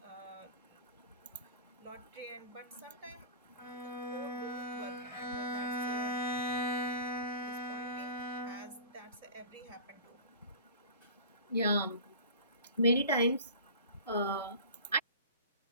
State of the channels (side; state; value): both; inverted; correlation -0.38